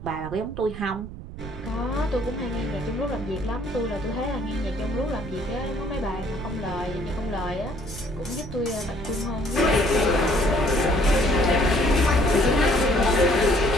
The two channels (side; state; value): right; noise; rumble, 12 dB below the sound